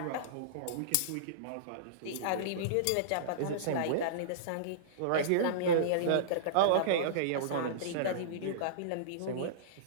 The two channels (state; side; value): different; both; correlation -0.03